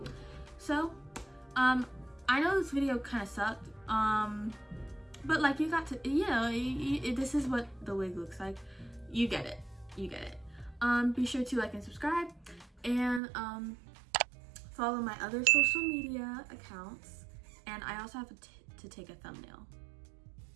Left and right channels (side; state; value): left; drops out; at 13.2 s